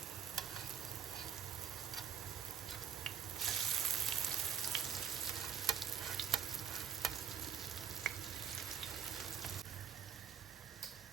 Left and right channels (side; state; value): left; quieter; 8.0 dB